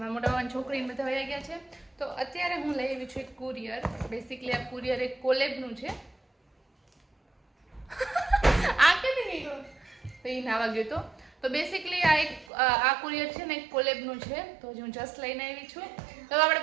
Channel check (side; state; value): left; drops out; at 12.5 s